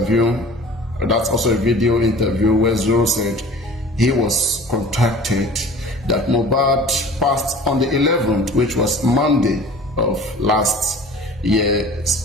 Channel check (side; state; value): both; normal; correlation 0.43